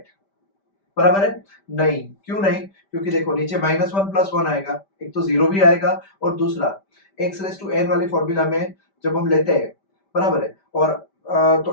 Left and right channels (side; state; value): right; late; 5.1 ms